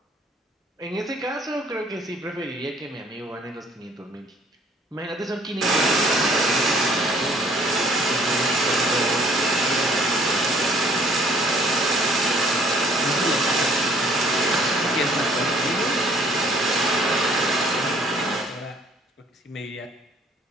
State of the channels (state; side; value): normal; both; correlation 0.58